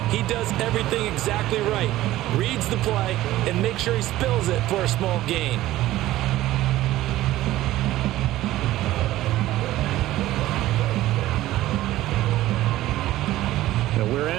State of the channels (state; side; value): quieter; left; 15.5 dB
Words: He does everything exactly right. Reads the play and makes sure he spills it for a small gain. Now we're